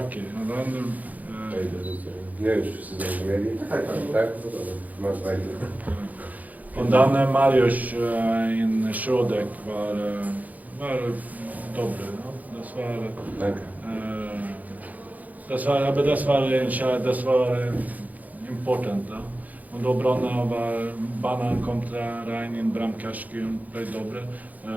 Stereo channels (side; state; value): left; late; 0.079 ms